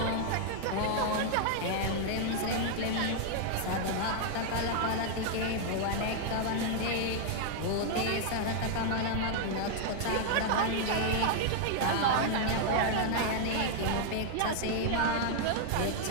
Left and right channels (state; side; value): different; both; correlation 0.00